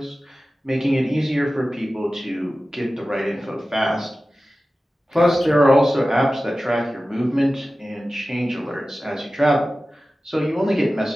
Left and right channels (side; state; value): both; normal; correlation 0.95